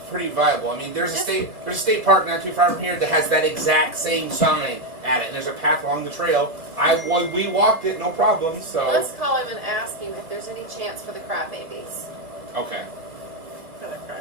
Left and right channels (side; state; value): left; late; 1.7 ms